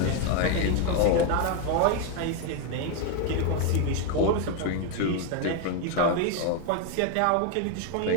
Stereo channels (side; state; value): both; different; correlation 0.01